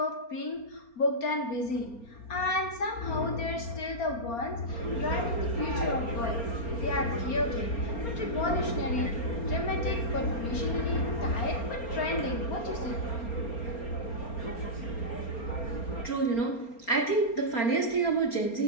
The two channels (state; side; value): late; right; 4.3 ms